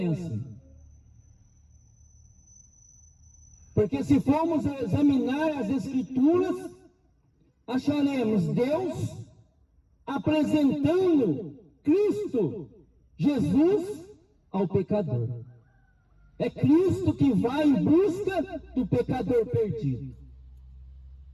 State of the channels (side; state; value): both; identical; correlation 1.00